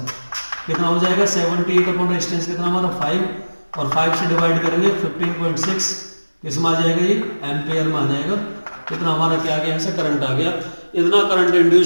कितना हो जाएगा 78 अपॉन रेजिस्टेंस कितना हमारा 5, और 5 से डिवाइड करेंगे 15.6 किस में आ जाएगा, ये एम्पेयर में आ जाएगा। कितना हमारा क्या आ गया, यहाँ से करंट आ गया। इतना करंट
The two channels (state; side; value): inverted; both; correlation -1.00